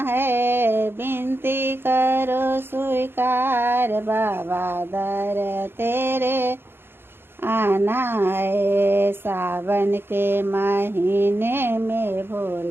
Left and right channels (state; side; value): late; left; 0.11 ms